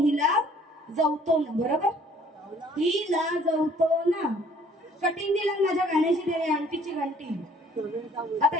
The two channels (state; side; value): normal; both; correlation 0.58